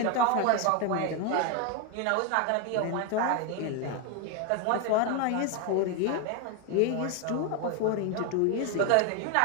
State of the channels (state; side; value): different; both; correlation 0.01